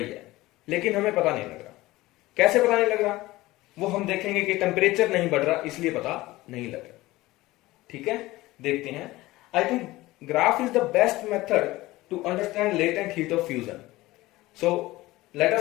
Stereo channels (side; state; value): right; quieter; 18.6 dB